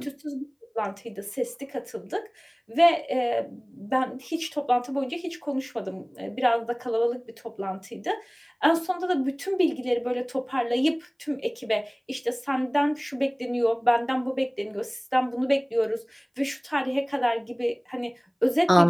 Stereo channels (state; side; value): identical; both; correlation 1.00